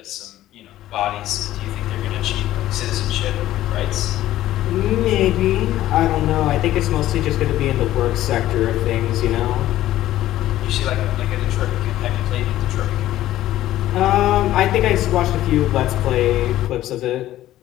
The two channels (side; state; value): right; quieter; 14.1 dB